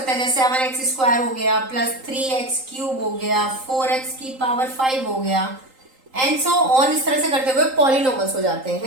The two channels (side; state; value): left; late; 3.8 ms